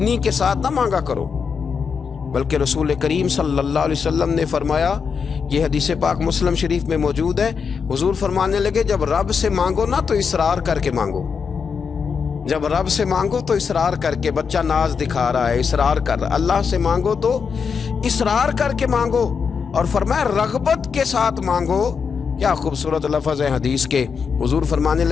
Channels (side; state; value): right; quieter; 6.0 dB